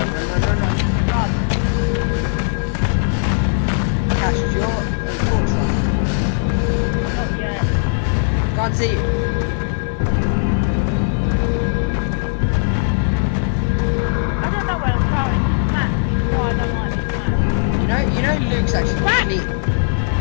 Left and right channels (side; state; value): right; silent; digital silence